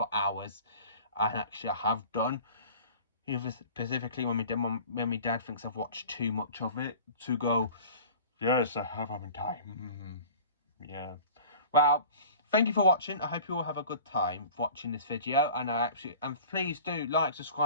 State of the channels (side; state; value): both; inverted; correlation -0.42